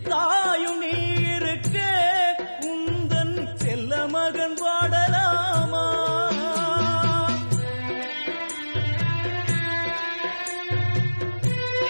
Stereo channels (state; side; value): inverted; both; correlation -1.00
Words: தாயும் நீ இருக்க உந்தன் செல்ல மகன் பாடலாமா?